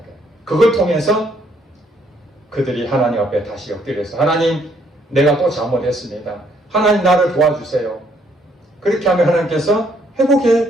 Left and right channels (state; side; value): normal; both; correlation 0.68